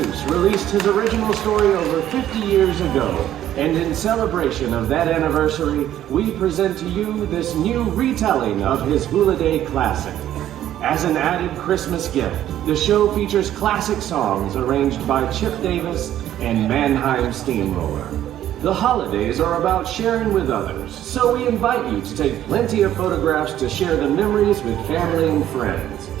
released his original story over 50 years ago, and in celebration of that anniversary, we present to you this new retelling of his Who-liday classic. As an added Christmas gift, the show features classic songs arranged by Chip Davis and Mannheim Steamroller. The holidays are about sharing with others, so we invite you to take plenty of photographs to share the memories with family and friends.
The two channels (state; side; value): quieter; left; 12.0 dB